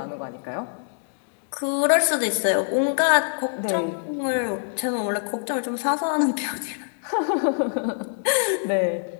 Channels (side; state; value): right; silent; digital silence